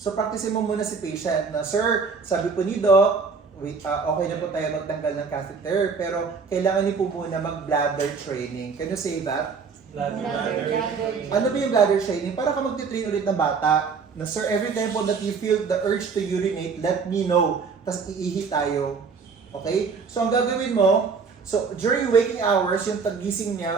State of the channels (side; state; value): left; quieter; 5.2 dB